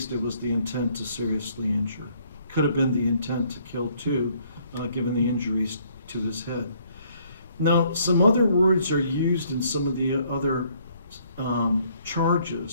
it was the intent to seriously injure. Could have been the intent to kill too, given the injuries to his head. Now, some other words are used in some of the other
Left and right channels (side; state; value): both; inverted; correlation -0.65